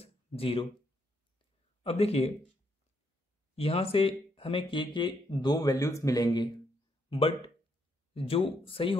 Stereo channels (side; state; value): both; normal; correlation 0.76